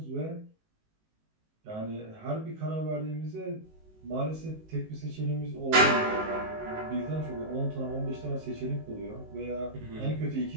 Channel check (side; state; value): left; late; 19 ms